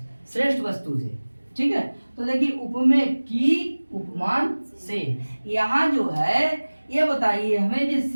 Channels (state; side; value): inverted; both; correlation -1.00